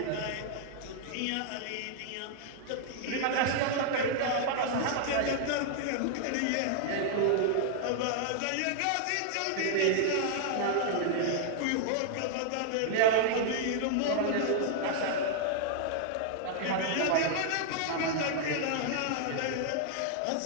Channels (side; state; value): both; different; correlation -0.01